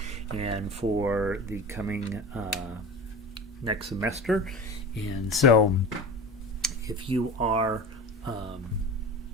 and for the coming next semester. And so if you are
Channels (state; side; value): normal; both; correlation 0.32